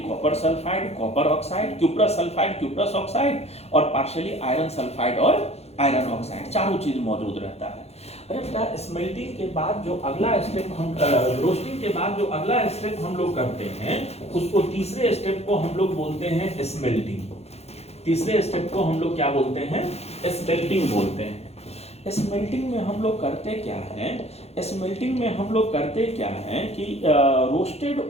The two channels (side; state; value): right; late; 0.30 ms